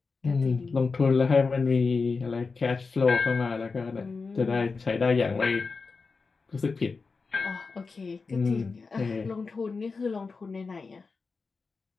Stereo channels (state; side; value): quieter; right; 4.5 dB